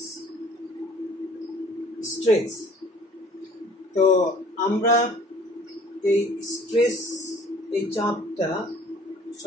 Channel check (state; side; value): normal; both; correlation 0.52